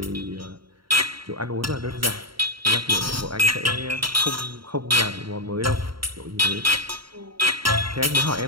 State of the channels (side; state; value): left; late; 0.73 ms